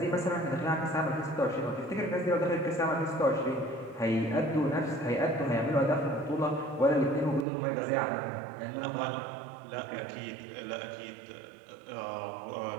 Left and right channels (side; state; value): left; drops out; at 7.5 s